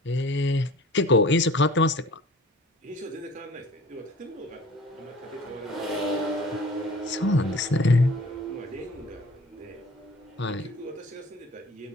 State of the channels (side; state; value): both; normal; correlation 0.46